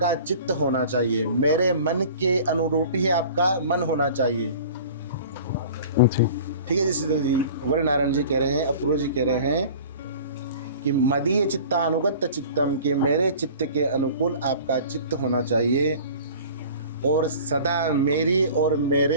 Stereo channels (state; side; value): inverted; both; correlation -0.43